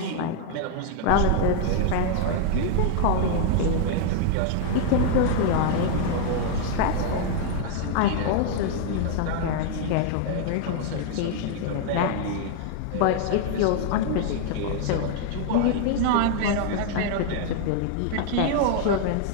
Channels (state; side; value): different; both; correlation 0.00